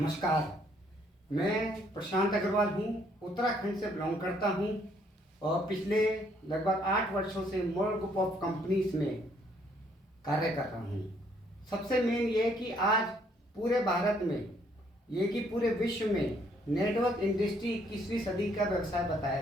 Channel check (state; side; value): normal; both; correlation 0.67